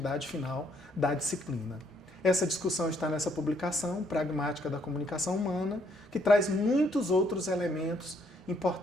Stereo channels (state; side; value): normal; both; correlation 0.69